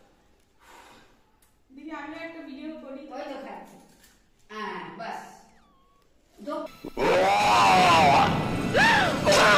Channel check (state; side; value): identical; both; correlation 1.00